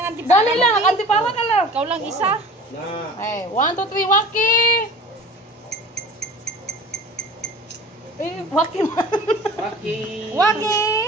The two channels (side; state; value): both; normal; correlation 0.42